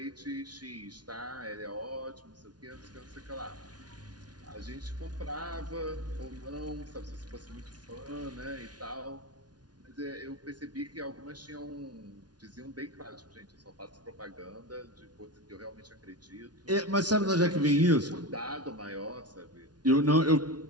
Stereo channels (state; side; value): late; left; 0.69 ms